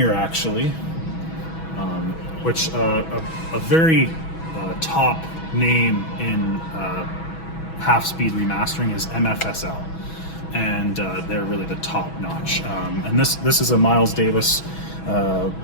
actually, which a very top name in half-speed remastering is MFSL, and they're really the top notch. And this is a Miles Davis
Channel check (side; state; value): right; late; 6.2 ms